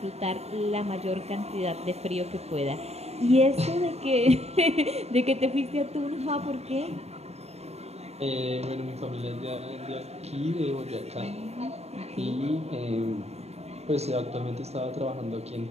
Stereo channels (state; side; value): late; left; 0.31 ms